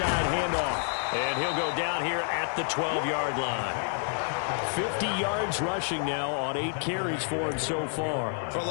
handoff. And he'll go down here at the 12-yard line. 50 yards rushing now on 8 carries for him so far. For a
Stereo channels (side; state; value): right; silent; digital silence